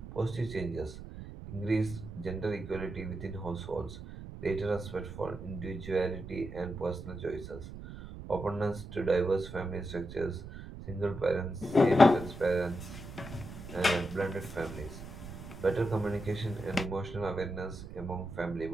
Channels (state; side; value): noise; right; rumble, 12 dB below the sound